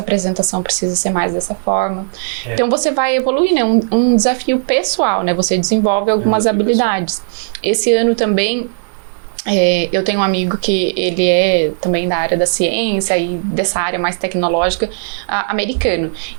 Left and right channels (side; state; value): left; silent; digital silence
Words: apresentação precisa ser mais dessa forma. Então você vai evoluir, né? Um desafio pessoal, né? Você desenvolve algumas habilidades. Esse ano também, eu tenho um amigo que ele é também da área da ciência e dessa área mais tecnológica, americano.